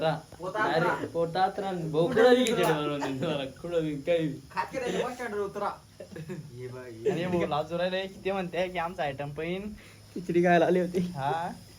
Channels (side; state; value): both; identical; correlation 1.00